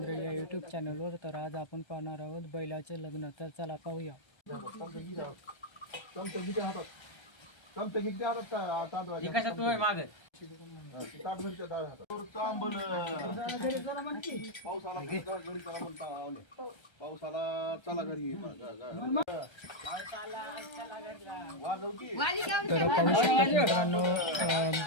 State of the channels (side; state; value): right; late; 1.3 ms